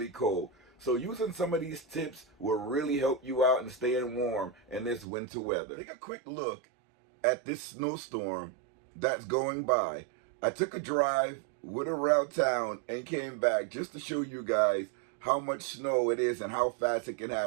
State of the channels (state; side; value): drops out; left; at 5.1 s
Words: cold. So using some of these tips will really help you out in staying warm in this winter weather. Take a quick look at this snowstorm that's going by. I took a drive, went around town, and came back just to show you guys how much snow it is and how fast it can